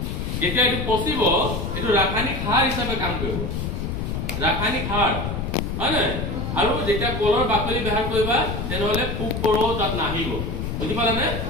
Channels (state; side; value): noise; left; rumble, 3 dB below the sound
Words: যেতিয়া এইটো পচিব, এইটো ৰাসায়নিক সাৰ হিচাপে কাম কৰিব, ৰাসায়নিক সাৰ, হয় নহয়? আৰু যেতিয়া কলৰ বাকলি ব্যৱহাৰ কৰিবা, তেনেহলে পোক পৰুৱা তাত নাহিব, বুজি পালানে?